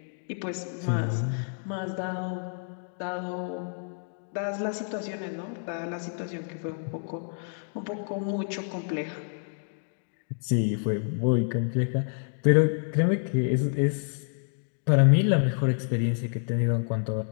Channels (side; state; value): right; silent; digital silence